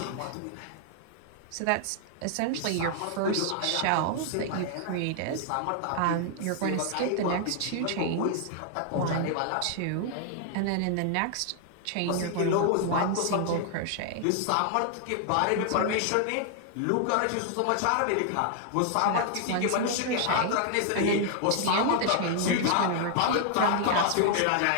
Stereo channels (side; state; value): both; different; correlation 0.00